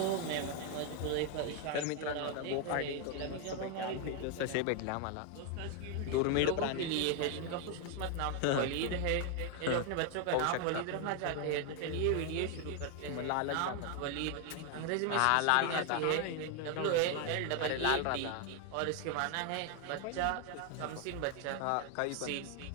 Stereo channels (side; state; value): both; different; correlation 0.01